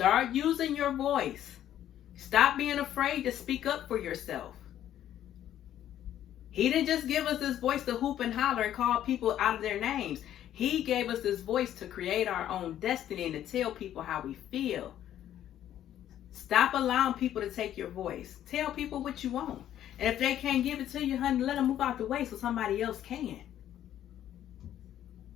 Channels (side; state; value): right; quieter; 11.4 dB